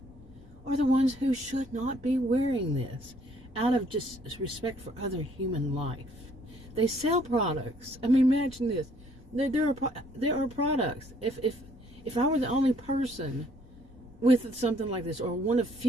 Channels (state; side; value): noise; right; rumble, 27 dB below the sound